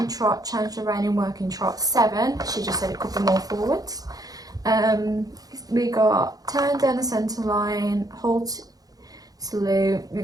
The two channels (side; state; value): left; late; 0.18 ms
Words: trot, change the rein in working trot, 7. She just said it could be more forwards. We got turn down the centre line, halt, salute, we